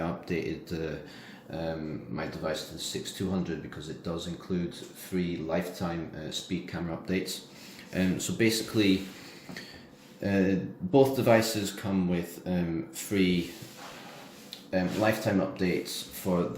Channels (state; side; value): identical; both; correlation 1.00